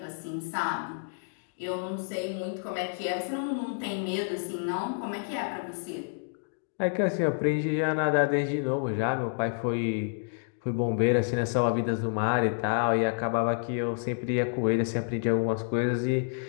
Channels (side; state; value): right; silent; digital silence